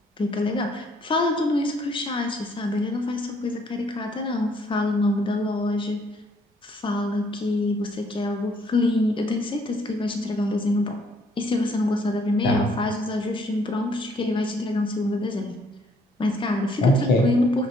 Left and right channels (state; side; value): normal; both; correlation 0.66